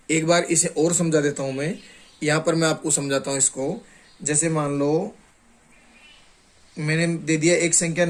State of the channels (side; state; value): both; identical; correlation 1.00